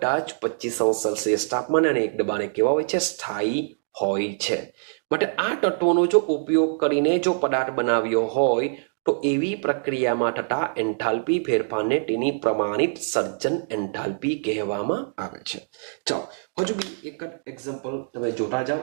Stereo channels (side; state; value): left; silent; digital silence